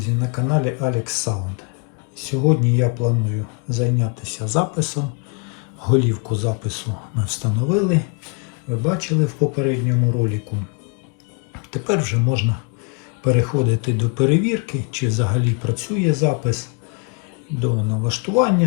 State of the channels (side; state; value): right; quieter; 34.5 dB